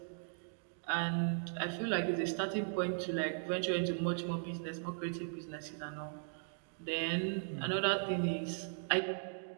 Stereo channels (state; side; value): silent; left; digital silence